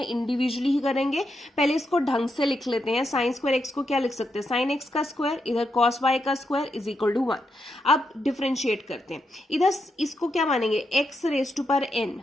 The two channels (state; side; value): normal; both; correlation 0.83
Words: इंडिविजुअली ही करेंगे। पहले इसको ढंग से लिख लेते हैं, sin स्क्वायर x को क्या लिख सकते हैं sin x का स्क्वायर, इधर cos y का स्क्वायर इज इक्वल टू 1। अब डिफ्रेंशिएट करते हैं, इधर इसको क्या मानेंगे x रेज टू पर n,